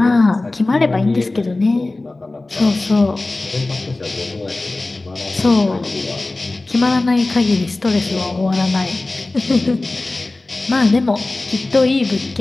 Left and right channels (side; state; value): right; quieter; 3.0 dB